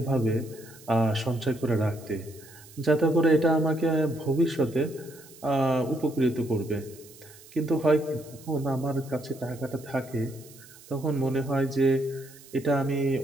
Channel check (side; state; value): right; noise; hiss, 22 dB below the sound